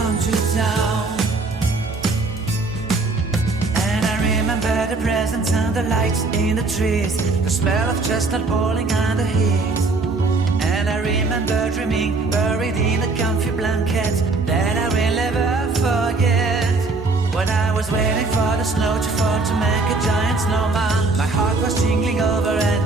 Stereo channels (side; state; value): left; quieter; 3.6 dB